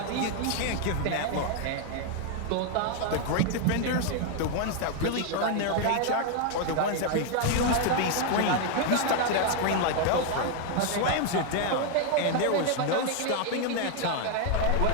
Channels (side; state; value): both; different; correlation 0.00